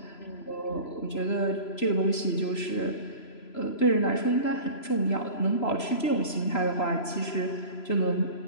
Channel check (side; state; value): right; late; 3.0 ms